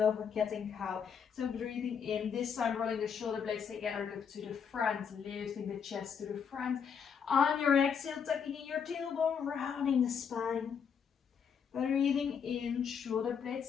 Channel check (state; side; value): quieter; right; 7.0 dB